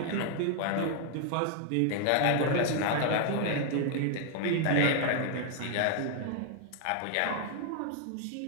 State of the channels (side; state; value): both; different; correlation 0.00